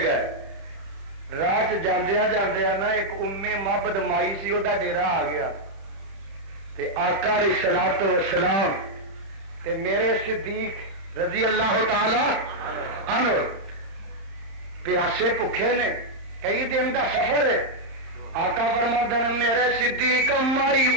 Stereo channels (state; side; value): late; left; 30 ms